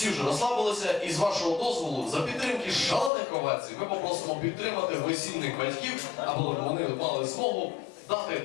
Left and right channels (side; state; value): right; drops out; at 3.1 s